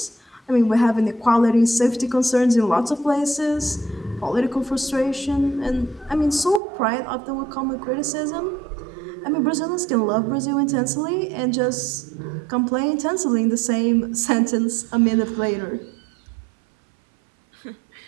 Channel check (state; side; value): drops out; left; at 6.6 s